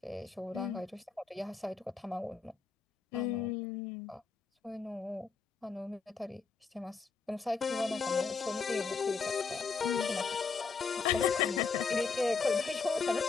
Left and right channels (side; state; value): right; quieter; 5.0 dB